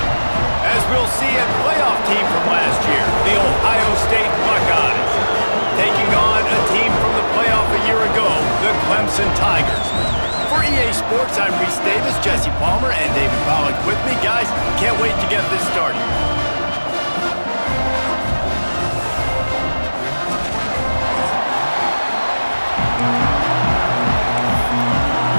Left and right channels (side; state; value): both; inverted; correlation -1.00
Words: As we'll see, a playoff team from last year, the Ohio State Buckeyes, taking on a team from the playoff a year ago, the Clemson Tigers. For EA Sports, I'm Reese Davis, Jesse Palmer, and David Pollack with me. Guys, can't wait to get this started.